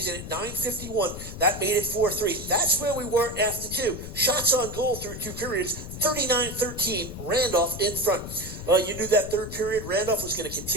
at 9:51. That made it 4-3. That's where we were after 2. Shots on goal through 2 periods, 39-13, Randolph in front. You knew that third period, Randolph was going to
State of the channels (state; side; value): noise; left; rumble, 10 dB below the sound